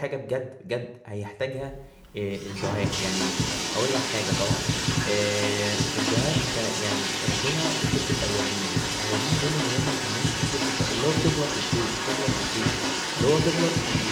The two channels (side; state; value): both; identical; correlation 1.00